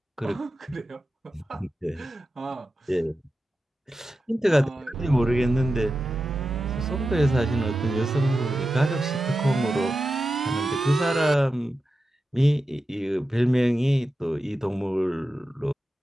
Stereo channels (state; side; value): normal; both; correlation 0.91